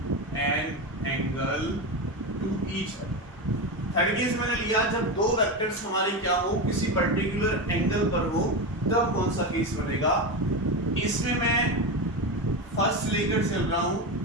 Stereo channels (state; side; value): normal; both; correlation 0.17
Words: an angle to each other। Third case मैंने लिया जब दो वेक्टर्स हमारे क्या हो, किसी पर्टिकुलर एंगल पर हो, तब कौन सा केस बनेगा। इसमें मैं फर्स्ट लेकर चल रहा हूं